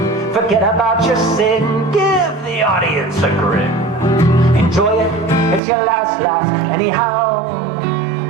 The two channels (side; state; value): left; drops out; at 5.6 s